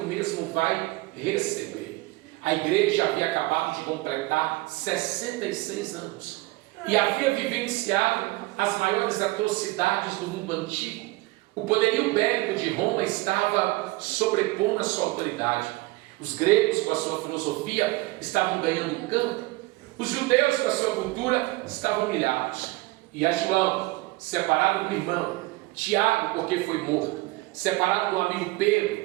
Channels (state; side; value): quieter; left; 21.1 dB